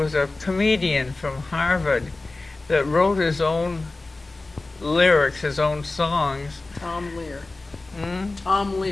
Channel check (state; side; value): quieter; right; 3.2 dB